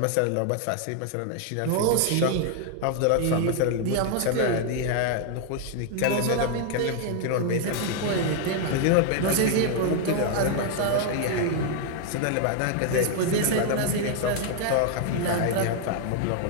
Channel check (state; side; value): different; both; correlation 0.00